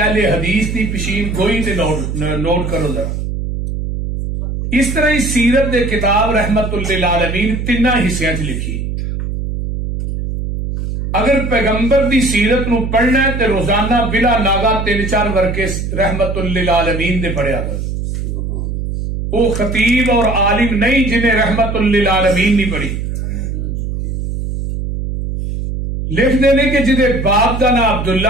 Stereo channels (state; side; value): noise; right; hum, 4 dB below the sound